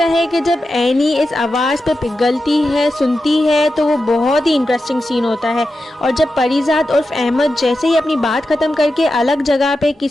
है कि जब एनी इस आवाज़ पे पिघलती है, सुनती है, तो वो बहुत ही इंटरेस्टिंग सीन होता है। और जब परिजात उर्फ अहमद जैसे ही अपनी बात ख़त्म करके अलग जगह पे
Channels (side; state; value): both; normal; correlation 0.90